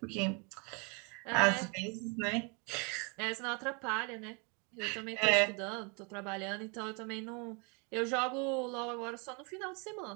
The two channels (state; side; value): quieter; left; 33.3 dB